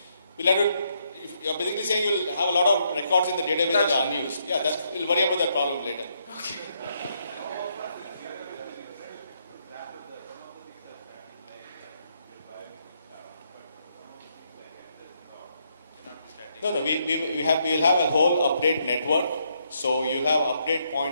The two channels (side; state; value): both; inverted; correlation -0.75